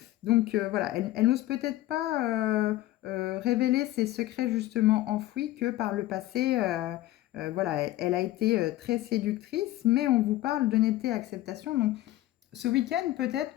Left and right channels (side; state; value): right; quieter; 15.7 dB